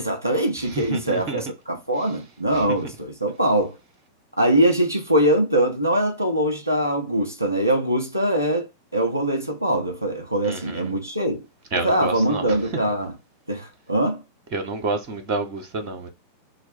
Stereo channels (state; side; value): inverted; both; correlation -0.52